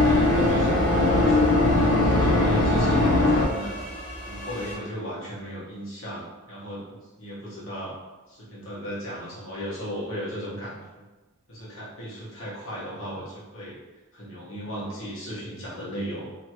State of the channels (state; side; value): normal; both; correlation 0.44